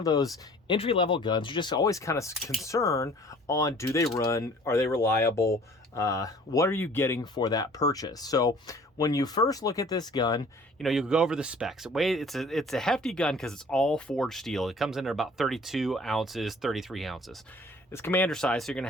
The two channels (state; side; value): normal; both; correlation 0.51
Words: those entry-level guns, you're just always kind of concerned on, do they run? Are they reliable? What are you getting for that purchase? So when you first look at this gun, you know, you go over the specs. It's a hefty gun because it's all forged steel. It comes in at about 32 ounces, 33 ounces. It's commander size, so you're going to